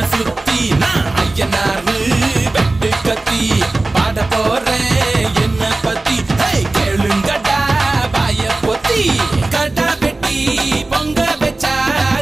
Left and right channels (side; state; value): left; quieter; 3.0 dB